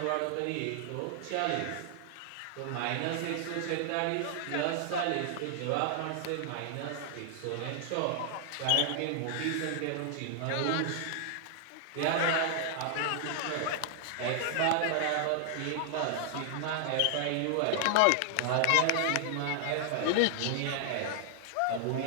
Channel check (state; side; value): different; both; correlation 0.00